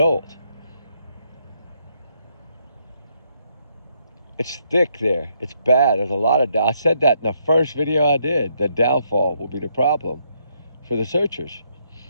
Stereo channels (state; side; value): inverted; both; correlation -0.74